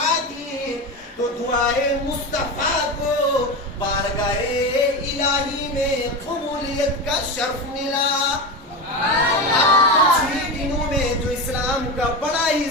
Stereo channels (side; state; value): both; normal; correlation 0.21